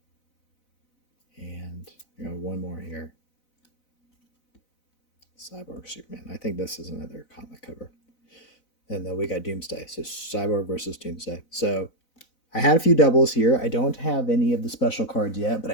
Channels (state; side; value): late; right; 4.0 ms